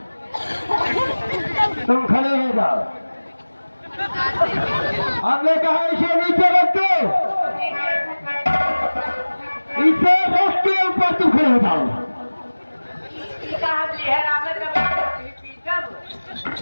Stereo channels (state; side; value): inverted; both; correlation -1.00